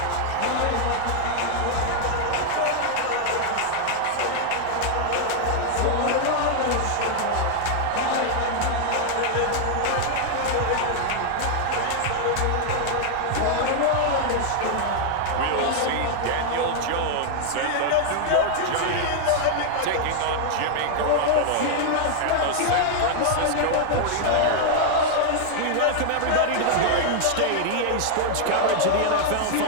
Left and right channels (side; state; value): both; different; correlation 0.00